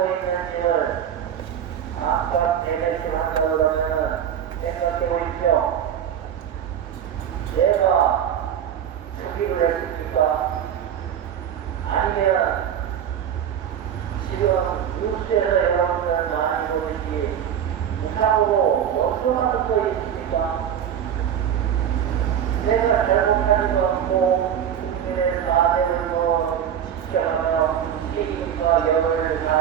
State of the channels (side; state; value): left; quieter; 9.3 dB